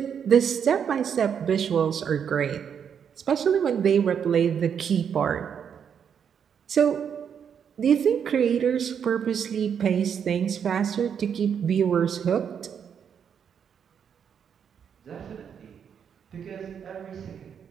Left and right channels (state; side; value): quieter; left; 7.7 dB